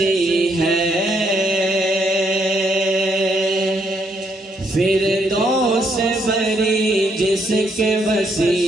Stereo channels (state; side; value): normal; both; correlation 0.74